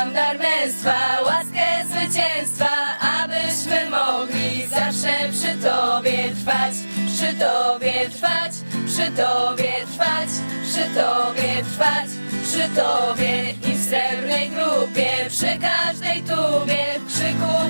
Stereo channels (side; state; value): both; inverted; correlation -1.00